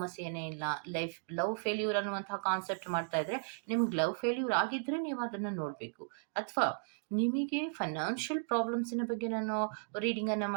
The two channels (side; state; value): left; silent; digital silence